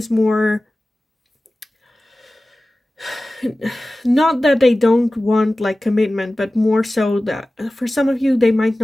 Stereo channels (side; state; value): both; normal; correlation 0.96